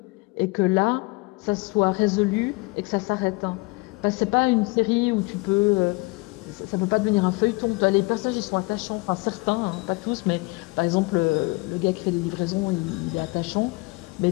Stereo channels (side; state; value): right; quieter; 26.0 dB